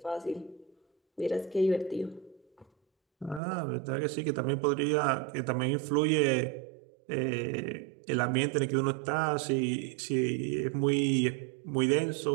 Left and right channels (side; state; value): left; drops out; at 3.4 s